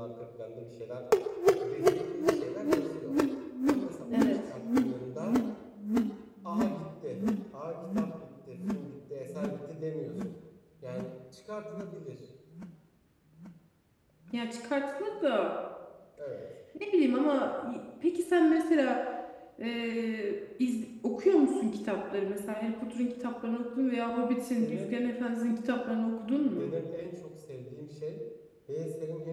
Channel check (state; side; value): identical; both; correlation 1.00